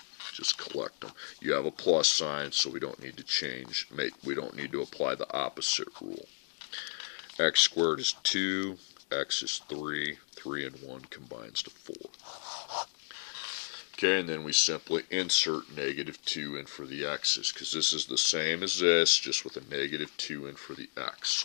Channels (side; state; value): right; silent; digital silence